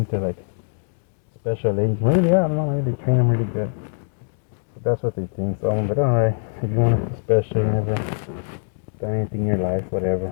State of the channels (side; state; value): right; silent; digital silence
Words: they're like special agents. Maybe they are. I don't know. Maybe they train them really good. But that's what they think. So I'm like, all right, if you want to feel special, you never done anything in your life,